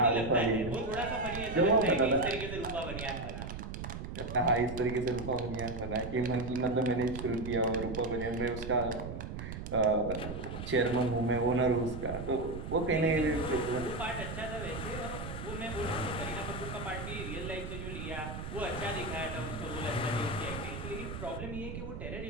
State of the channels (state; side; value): noise; right; rumble, 7 dB below the sound